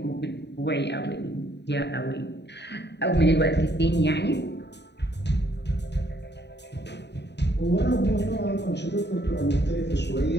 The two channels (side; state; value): right; late; 0.50 ms